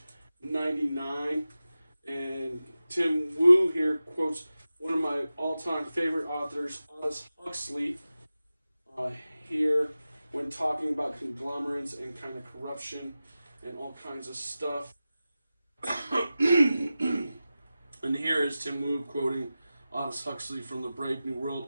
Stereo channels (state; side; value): inverted; both; correlation -0.95